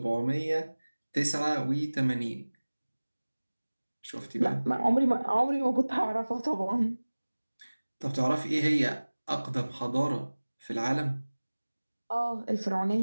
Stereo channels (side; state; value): both; inverted; correlation -1.00